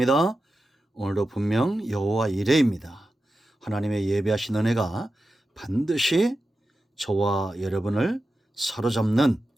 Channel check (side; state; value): both; normal; correlation 0.91